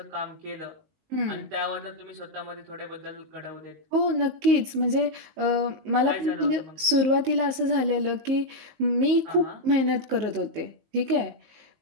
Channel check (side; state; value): left; late; 19 ms